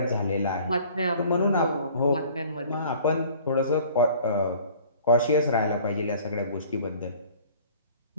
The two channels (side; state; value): both; inverted; correlation -0.50